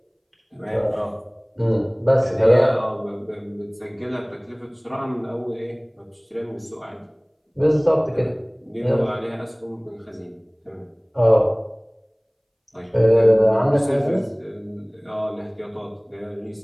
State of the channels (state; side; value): identical; both; correlation 1.00